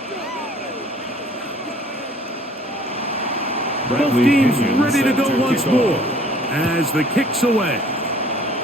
Both teams ready to go once more as the kick's away.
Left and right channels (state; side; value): normal; both; correlation 0.54